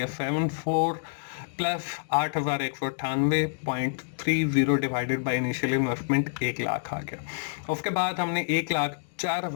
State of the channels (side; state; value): right; silent; digital silence